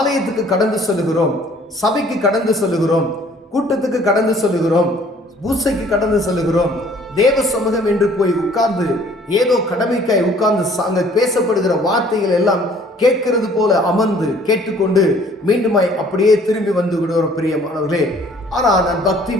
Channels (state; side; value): normal; both; correlation 0.56